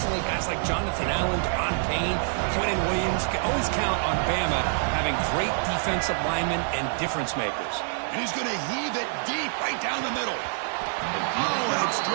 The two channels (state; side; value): silent; left; 61 dB below the other